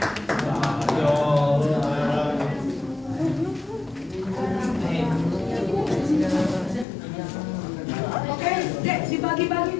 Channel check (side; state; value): right; drops out; at 6.9 s